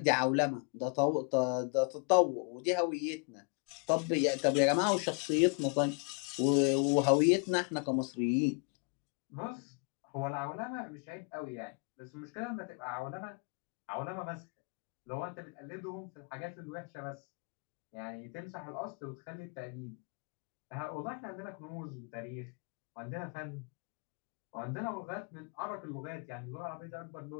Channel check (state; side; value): quieter; right; 35.9 dB